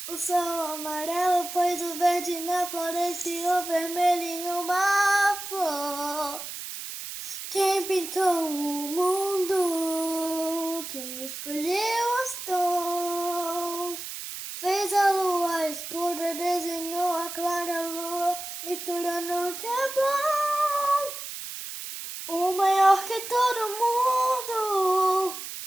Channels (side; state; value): right; noise; hiss, 9 dB below the sound